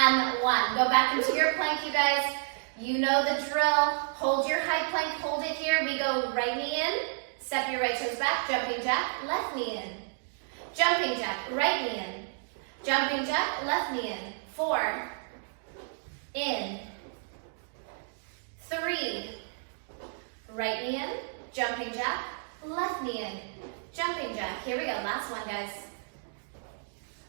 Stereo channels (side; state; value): left; silent; digital silence